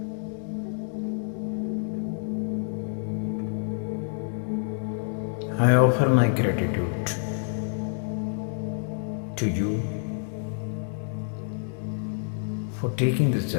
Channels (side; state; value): right; silent; digital silence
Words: I offer my gratitude to you for taking this